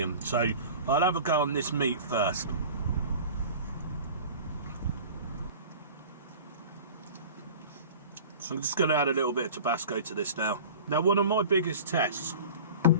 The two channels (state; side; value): inverted; both; correlation -0.40